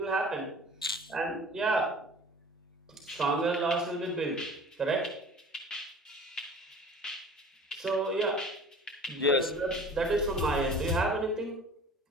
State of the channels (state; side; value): normal; both; correlation 0.44